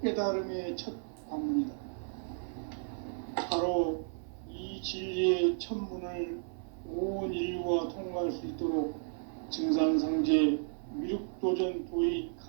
깨달음의 첫 관문이다. 바로 이 진리의 첫 문을 온 인류가 통과할 수 있도록 증산상제 미륵도전 도의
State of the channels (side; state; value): left; silent; 55 dB below the other